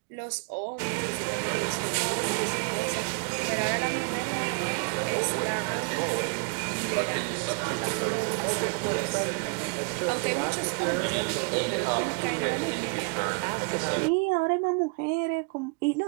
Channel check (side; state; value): left; quieter; 35.8 dB